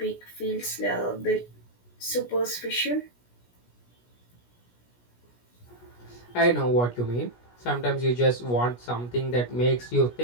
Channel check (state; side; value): late; right; 17 ms